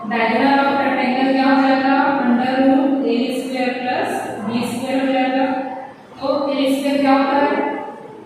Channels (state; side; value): identical; both; correlation 1.00